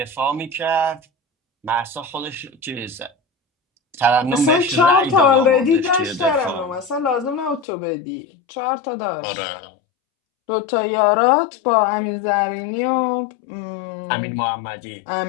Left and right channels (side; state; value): right; drops out; at 7.7 s